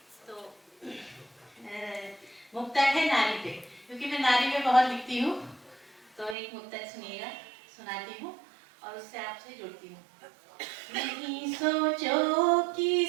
तो मुक्तक है नारी पे, क्योंकि मैं नारी पे बहुत लिखती हूँ। तो एक मुक्तक सुनिएगा, सुनाती हूँ और उससे आपसे जुड़ती हूँ। नहीं सोचो कि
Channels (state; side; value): drops out; left; at 6.4 s